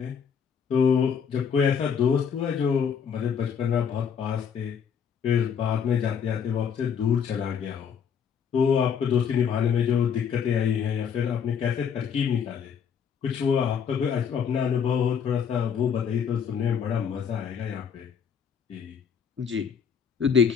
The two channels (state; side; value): quieter; right; 7.2 dB